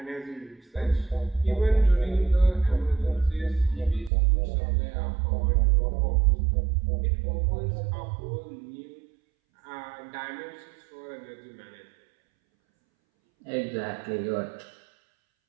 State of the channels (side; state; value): left; drops out; at 4.1 s